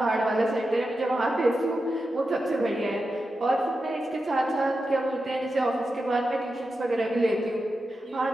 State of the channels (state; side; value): normal; both; correlation 0.90